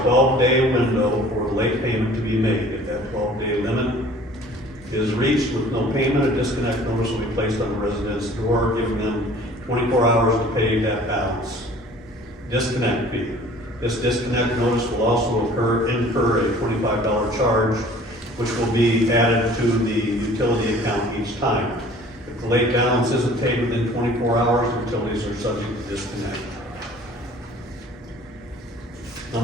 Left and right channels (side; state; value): both; normal; correlation 0.50